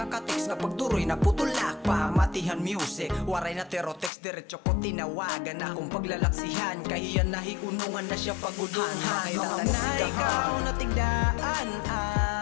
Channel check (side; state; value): right; drops out; at 4.1 s